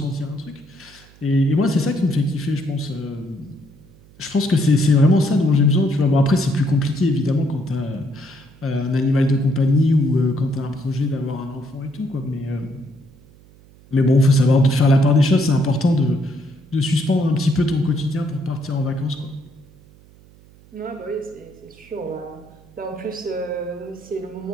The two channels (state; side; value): noise; right; hum, 26 dB below the sound